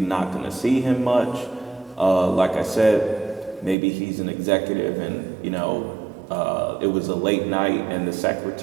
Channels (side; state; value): left; drops out; at 3.8 s